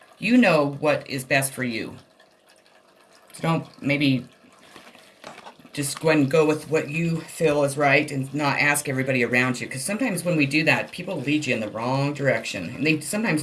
You know what is best for you. So don't maybe just go ahead and go with what you feel is right and not ask everybody around you. Because sometimes when we do that, people lead you in the wrong direction. And sometimes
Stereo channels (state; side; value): identical; both; correlation 1.00